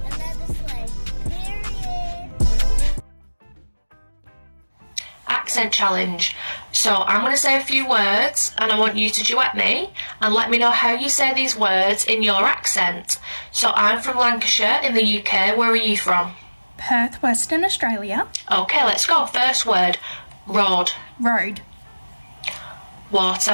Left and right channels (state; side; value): inverted; both; correlation -1.00